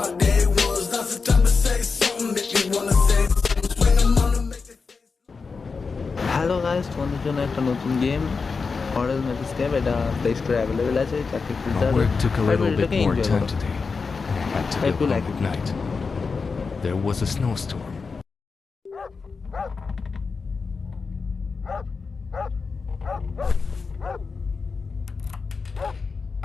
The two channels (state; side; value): quieter; right; 4.8 dB